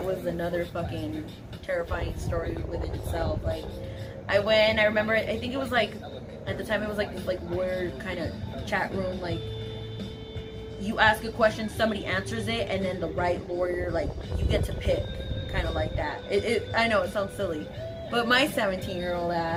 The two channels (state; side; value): identical; both; correlation 1.00